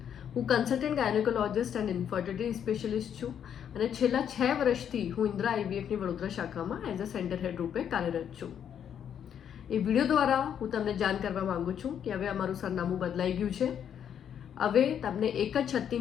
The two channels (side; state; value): right; quieter; 8.8 dB